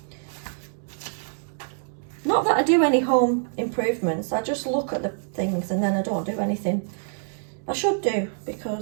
Not that I do any home improvements. I just look at the things and then I don't do anything. I should do,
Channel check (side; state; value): left; silent; digital silence